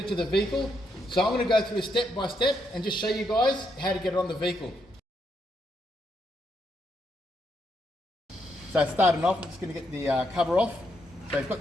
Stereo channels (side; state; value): both; normal; correlation 0.78